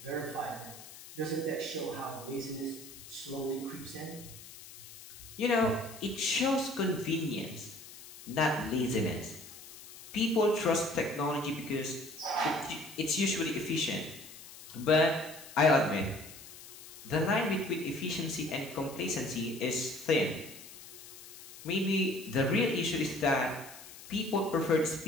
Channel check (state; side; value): noise; left; hiss, 16 dB below the sound